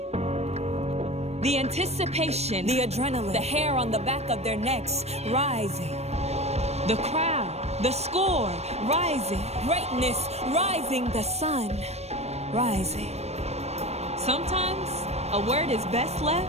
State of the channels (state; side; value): late; left; 0.31 ms